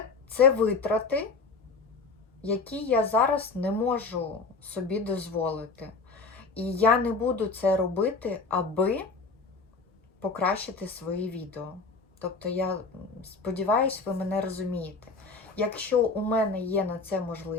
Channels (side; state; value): right; quieter; 4.2 dB